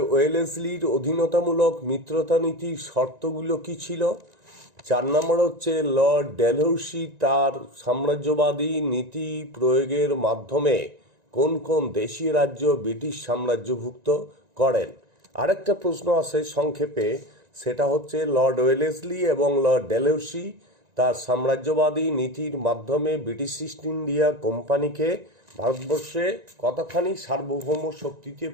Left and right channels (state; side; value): late; left; 1.9 ms